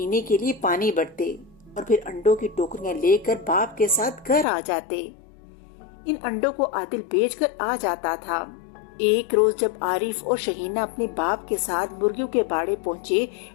کے لیے پانی بھرتے اور پھر انڈوں کی ٹوکریاں لے کر باپ کے ساتھ گھر آ جاتے۔ ان انڈوں کو عادل بیچ کر آ جاتا تھا۔ ایک روز جب عارف اور شہینہ اپنے باپ کے ساتھ مرغیوں کے باڑے پہنچے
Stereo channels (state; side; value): drops out; right; at 4.5 s